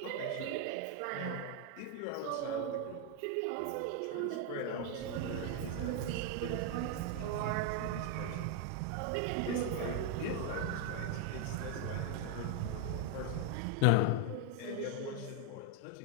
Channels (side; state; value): both; different; correlation 0.01